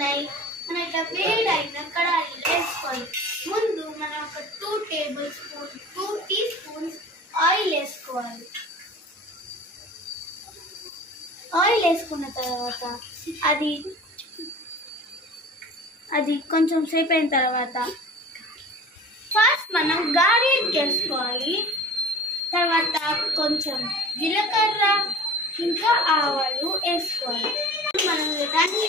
ఉన్నాయి. మనం ఇట్లా వేడైన కడాయిలో వేసుకోవాలి. ముందు మనం ఒక 2 టీ స్పూన్స్ ఆయిల్ వేసుకోవాలి. ఆయిల్ వేసుకున్న తర్వాత అది కొంచెం సేపు అయిన తర్వాత ఫస్ట్ మనం గార్లిక్ వేసుకోవాలి. తర్వాత కొంచెం జీలకర్ర ఇంకా ఆవాలు వేసుకోవాలి. మనం దాన్ని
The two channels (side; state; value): both; normal; correlation 0.41